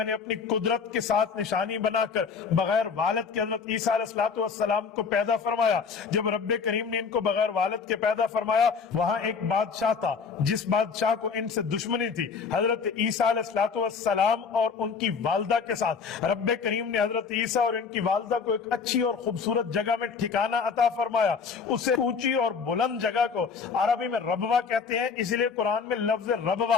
نے اپنی قدرت کے ساتھ نشانی بنا کر بغیر والد کے حضرت عیسیٰ علیہ السلام کو پیدا فرمایا۔ جب رب کریم نے ان کو بغیر والد کے پیدا فرمایا، وہاں ایک بادشاہ تھا جس بادشاہ کو ان سے دشمنی تھی۔ حضرت عیسیٰ علیہ السلام اور ان کی والدہ کے ساتھ رب کریم نے حضرت عیسیٰ اور ان کی والدہ کو ایک اچھی اور خوبصورت جگہ میں ٹھکانہ عطا فرمایا۔ اسے اونچی اور بلند جگہ کو عربی میں ربوہ کہتے ہیں، اس لیے قرآن میں لفظ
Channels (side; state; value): right; quieter; 5.6 dB